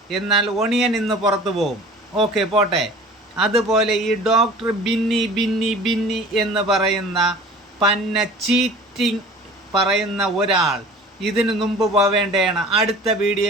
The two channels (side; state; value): both; normal; correlation 0.43